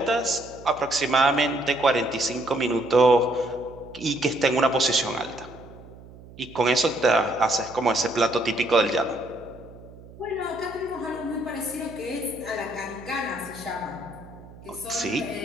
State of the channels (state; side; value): noise; right; hum, 19 dB below the sound